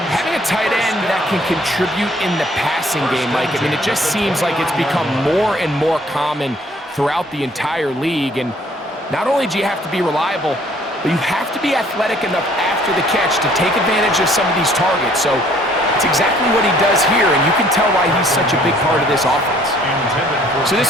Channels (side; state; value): both; normal; correlation 0.60